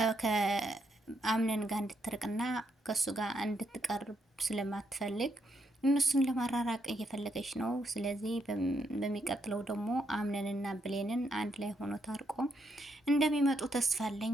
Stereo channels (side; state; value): both; normal; correlation 0.77